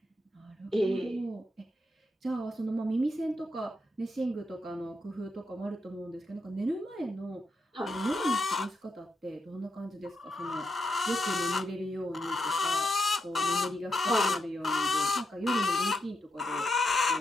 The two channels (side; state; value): both; normal; correlation 0.83